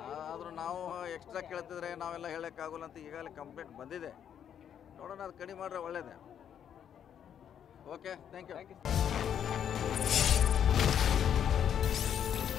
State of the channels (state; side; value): quieter; right; 9.0 dB